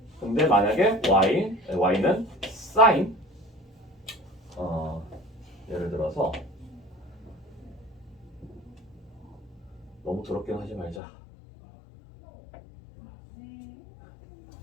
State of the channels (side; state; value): right; drops out; at 11.0 s